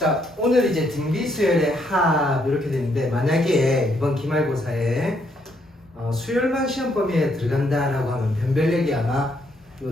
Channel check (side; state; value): both; normal; correlation 0.73